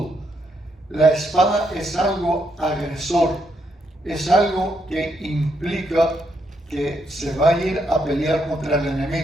La espada es algo agresor, es algo que implica que se va a ir a pelear contra el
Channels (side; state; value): both; normal; correlation 0.77